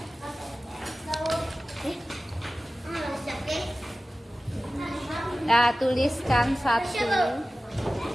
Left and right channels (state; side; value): normal; both; correlation 0.96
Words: Ya, tuliskan satu.